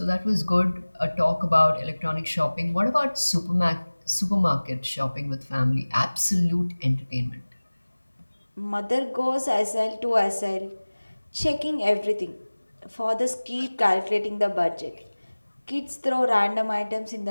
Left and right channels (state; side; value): inverted; both; correlation -1.00